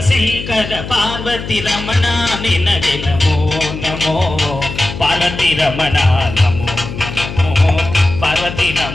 शंकर पार्वती रमण निनगे नमो नमो पार्वती रमण नमो नमो पार्वती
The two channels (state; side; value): noise; left; hum, 9 dB below the sound